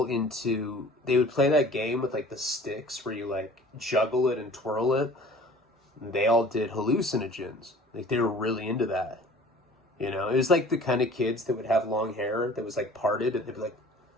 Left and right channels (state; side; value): normal; both; correlation 0.48